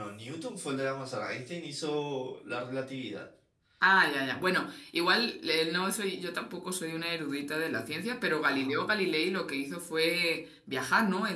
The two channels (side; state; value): both; identical; correlation 1.00